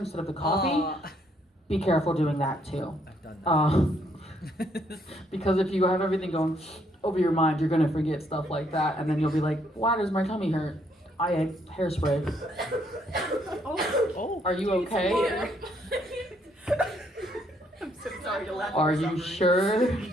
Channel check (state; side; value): normal; both; correlation 0.70